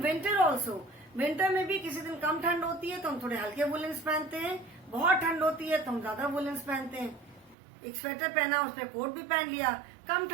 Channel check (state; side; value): drops out; left; at 7.6 s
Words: विंटर ऑल्सो, विंटर में भी किसी दिन कम ठंड होती है तो हम थोड़े हल्के वुलेंस पहनते हैं, बहुत ठंड होती है तो हम ज्यादा वुलेंस पहनते हैं। एक स्वेटर पहना, उसमें कोट भी पहन लिया, कम